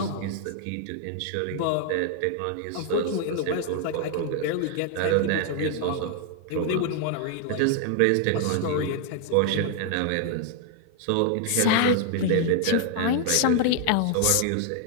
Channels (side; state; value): both; different; correlation 0.00